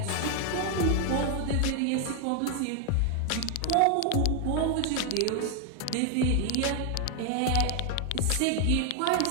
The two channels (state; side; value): different; both; correlation 0.00